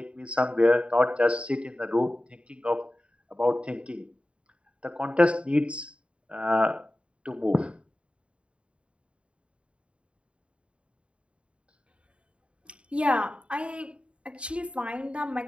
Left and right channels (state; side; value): late; left; 0.059 ms